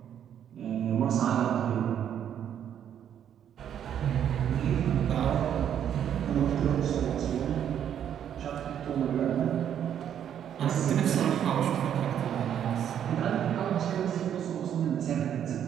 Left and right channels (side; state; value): left; quieter; 9.5 dB